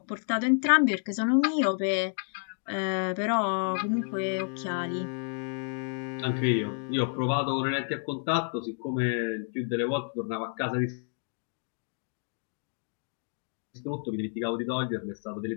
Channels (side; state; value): right; silent; 57 dB below the other